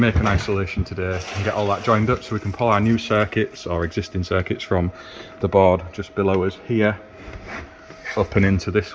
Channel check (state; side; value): identical; both; correlation 1.00